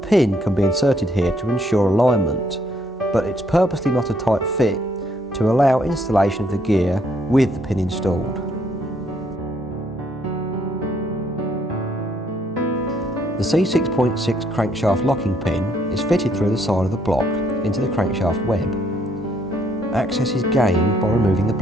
can be inserted here to ensure alignment, but it's purposely not a tight fit to allow installation of the gear with the pin installed. The C6.6 crankshaft locking pin is fitted through the side of the block into the crankshaft web. Access is gained by removing the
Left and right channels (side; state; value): both; normal; correlation 0.69